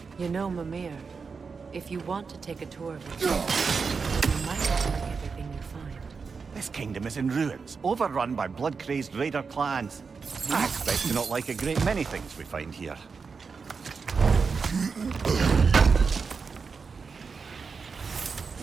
You know, Mimir, If you want to take a tour of it, you might not like everything you find. This kingdom is in ruins, overrun by blood-crazed raider clans. I expect to not like a great many things we find here.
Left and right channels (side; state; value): left; quieter; 5.2 dB